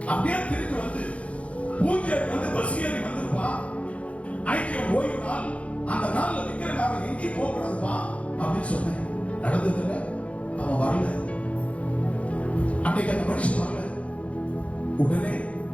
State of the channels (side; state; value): right; late; 0.064 ms